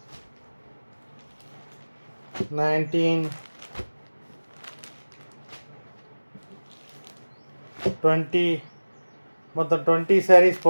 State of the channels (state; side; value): inverted; both; correlation -1.00